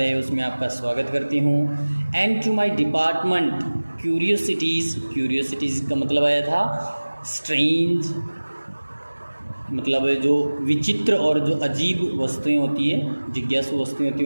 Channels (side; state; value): both; inverted; correlation -1.00